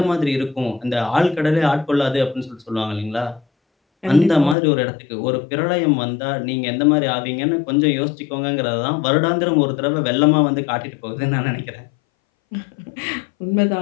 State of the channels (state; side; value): drops out; right; at 4.5 s